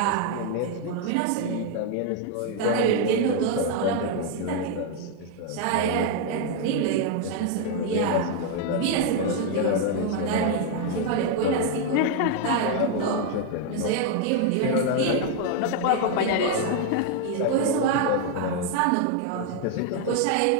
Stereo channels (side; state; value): both; different; correlation 0.00